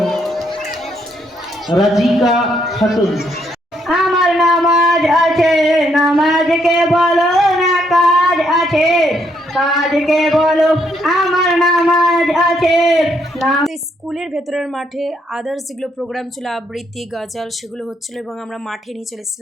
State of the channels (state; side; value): normal; both; correlation 0.73